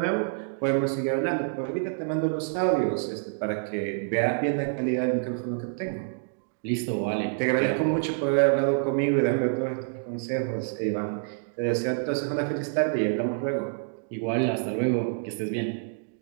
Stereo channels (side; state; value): left; silent; digital silence